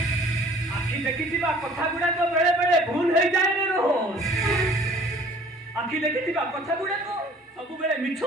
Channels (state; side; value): normal; both; correlation 0.52